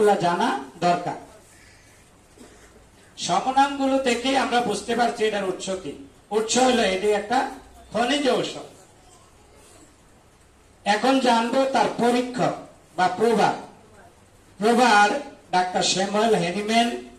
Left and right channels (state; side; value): identical; both; correlation 1.00